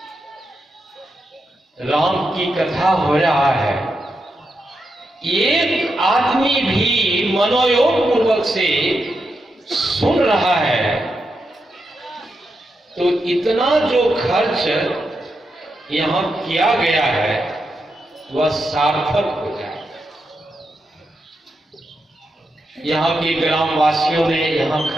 राम की कथा हो रहा है, एक आदमी भी मनोयोग पूर्वक से सुन रहा है, तो इतना जो खर्च यहां किया गया है वह सार्थक हो जाए। यहां के ग्रामवासियों ने यहां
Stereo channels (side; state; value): both; normal; correlation 0.85